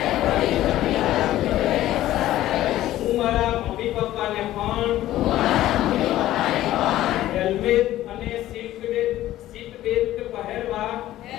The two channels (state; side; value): quieter; right; 14.3 dB